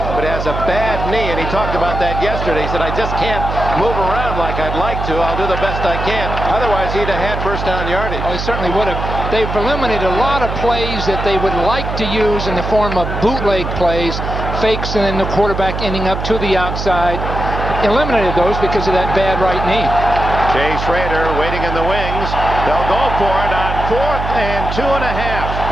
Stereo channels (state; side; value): noise; right; hum, 4 dB below the sound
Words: but has a bad knee, and he talked about that yesterday. He said, I just can't move around like I'd like to. I'll do the best I can. Otherwise, he'd have had first down yardage. Oh, he certainly would have. They've eliminated a lot of plays that they would like to use in the form of bootleg plays, fakes, and then the quarterback ending up to the outside. Eliminated those because of that bad right knee. Jay Schrader waiting in the wings. They'll go for it on 4th and 2.5.